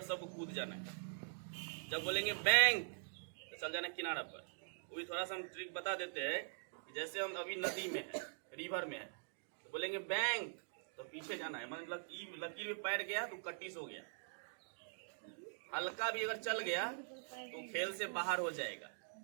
सबको कूद जाना है। जब बोलेंगे बैंक तो चल जाना है किनारा पर। वही थोड़ा सा हम ट्रिक बता देते हैं कि जैसे हम अभी नदी में है, रिवर में है, तो बोलेंगे बैंक तो पीछे जाना है, मतलब लकीर में पैर गया तो कट्टिस हो गया। हल्का भी अगर चल गया तो खेल से बाहर हो जाएगा।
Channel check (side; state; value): left; silent; digital silence